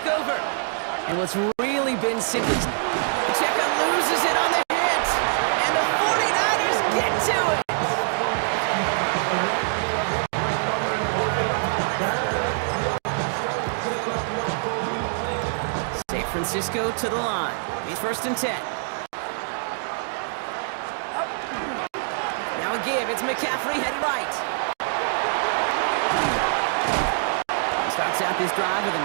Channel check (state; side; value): silent; left; digital silence